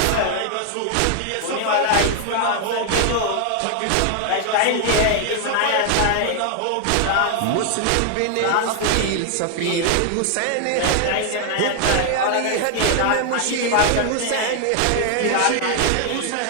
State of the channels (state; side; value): different; both; correlation 0.00